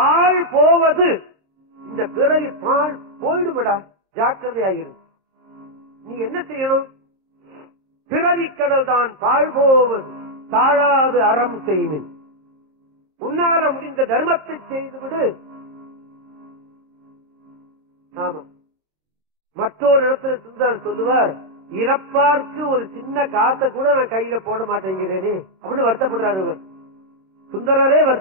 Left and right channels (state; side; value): late; left; 26 ms